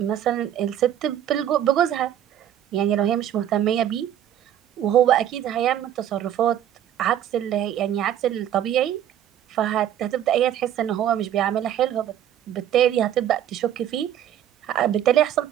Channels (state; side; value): quieter; left; 10.9 dB